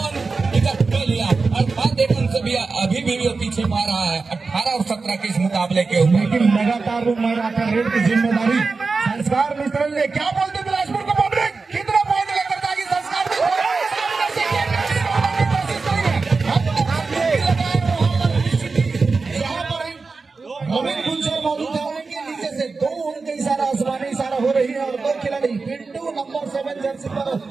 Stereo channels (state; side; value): quieter; left; 4.2 dB